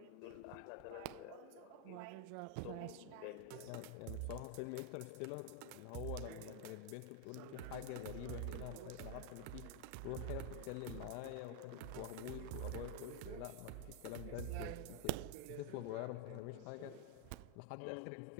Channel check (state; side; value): different; both; correlation 0.00